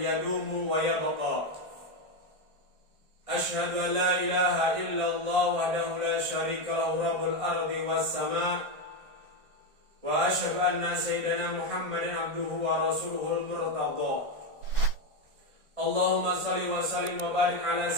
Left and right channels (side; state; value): left; late; 1.6 ms